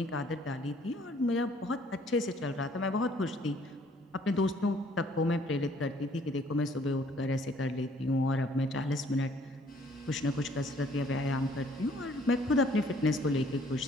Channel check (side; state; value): both; normal; correlation 0.60